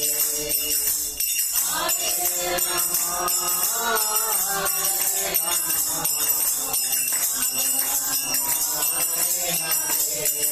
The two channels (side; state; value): both; identical; correlation 1.00